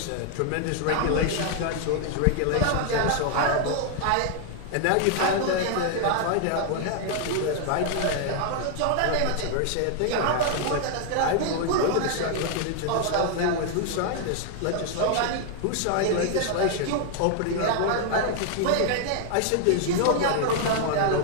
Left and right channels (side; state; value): both; different; correlation 0.00